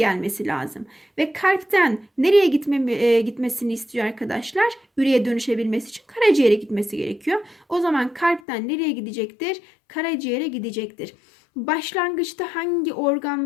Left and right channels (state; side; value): drops out; right; at 8.4 s